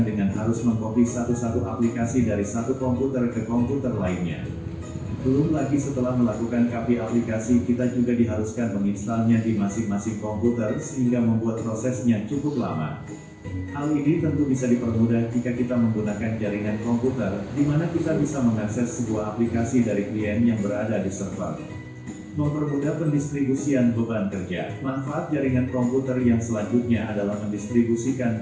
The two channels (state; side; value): identical; both; correlation 1.00